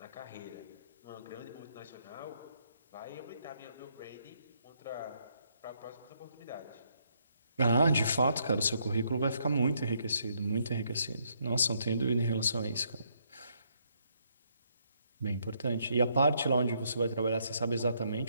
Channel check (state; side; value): inverted; both; correlation -0.73